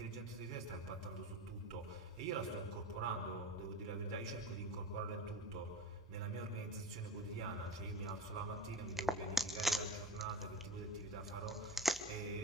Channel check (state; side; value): normal; both; correlation 0.31